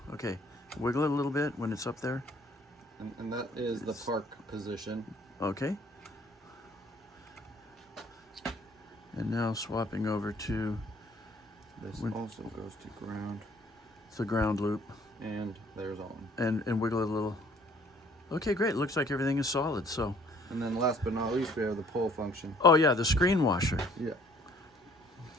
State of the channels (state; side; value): normal; both; correlation 0.58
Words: Okay, wiggle it a little bit when it's up there. And that is the park position. Okay. And now swapping over to... This also goes to ground. It's a ground loop. And there's on. And wiggle it a little. Okay, great. Looks like everything is solid, so... And then last but not least, we have the pull function. Oh yeah, the screen washer. Yeah.